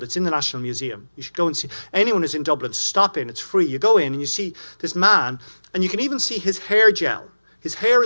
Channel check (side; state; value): both; inverted; correlation -1.00